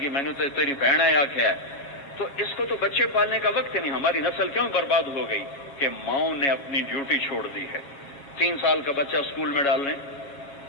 گی میں نے تو تیری بہن ہے آخیا ہے. تو اس کو تو بچے پالنے کا وقت نہیں. ہماری نسل کیوں برباد ہو گئی کہ ماؤں نے اپنی ڈیوٹی چھوڑ دی ہے. 3 سال کا بچہ اسکول میں ڈالنے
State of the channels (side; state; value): right; late; 7.2 ms